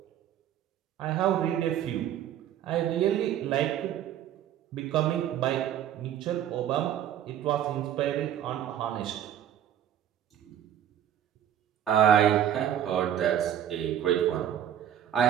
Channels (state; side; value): quieter; left; 10.5 dB